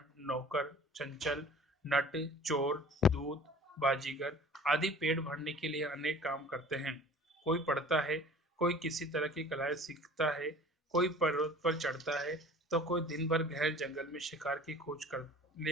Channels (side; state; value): both; normal; correlation 0.45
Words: नौकर चंचल नट चोर दूत बाजीगर आदि पेट भरने के लिए अनेक काम करते हैं। कोई पढ़ता है, कोई किसी तरह की कलाएं सीखता है, कोई पर्वत पर चढ़ता है तो कोई दिन भर गहरे जंगल में शिकार की खोज